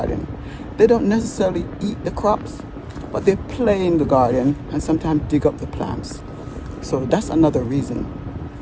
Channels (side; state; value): both; identical; correlation 1.00